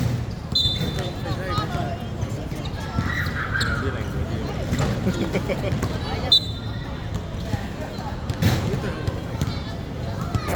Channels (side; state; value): both; identical; correlation 1.00